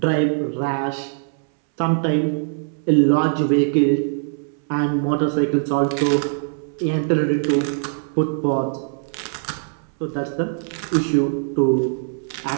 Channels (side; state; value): left; silent; 64 dB below the other